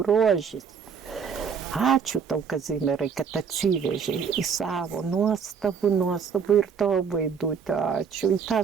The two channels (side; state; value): left; quieter; 6.4 dB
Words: Ačiū tau, Kazimierai, kad atsivežei į savo nuostabų ir tavo Vaidutę. Ačiū į tą